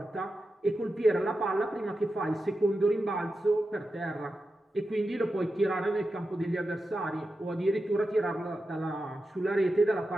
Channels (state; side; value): normal; both; correlation 0.90